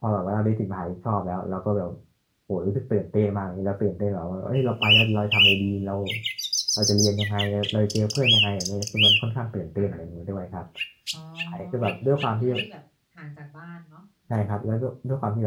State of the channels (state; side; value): identical; both; correlation 1.00